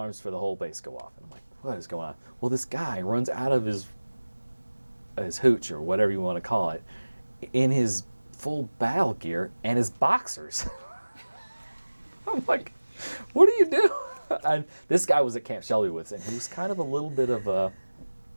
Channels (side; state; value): both; inverted; correlation -1.00